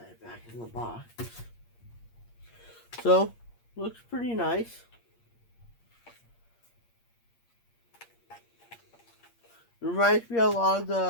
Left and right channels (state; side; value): late; right; 8.6 ms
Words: back in the box. So, looks pretty nice. It reminds me a lot of